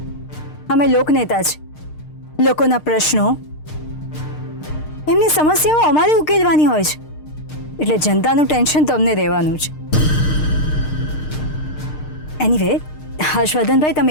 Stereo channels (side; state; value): right; late; 6.6 ms